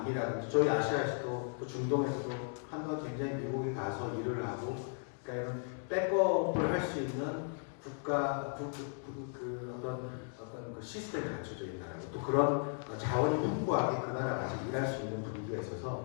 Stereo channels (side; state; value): right; silent; 54 dB below the other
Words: 저희 아시아에서도 또 중동에서도 한번 굉장히 미국에 가서 일을 하고 그러니까 이런 백업을 할 수 있는 국가 어떤 그 시스템이 갖춰져 있는 나라고 또 그런 자원이 풍부하게 그 나라 가서 일할 수 있는 분위기가